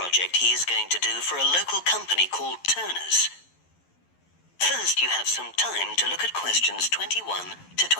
he is going to do for a local company called Turner's. First, you have some time to look at questions 21 to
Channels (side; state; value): right; late; 11 ms